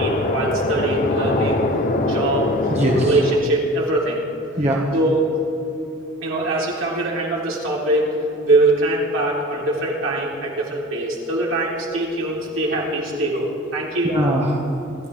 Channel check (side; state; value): both; normal; correlation 0.39